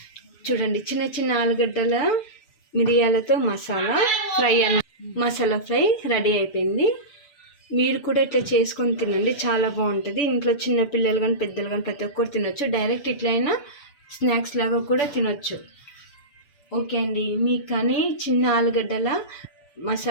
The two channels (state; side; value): late; right; 6.9 ms